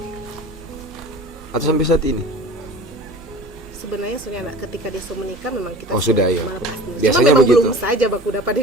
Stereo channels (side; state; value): both; normal; correlation 0.40